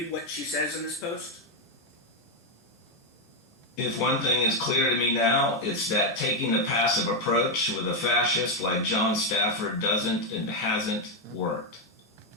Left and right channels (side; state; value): both; normal; correlation 0.03